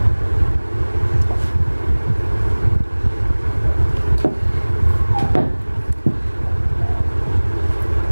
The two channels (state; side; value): inverted; both; correlation -1.00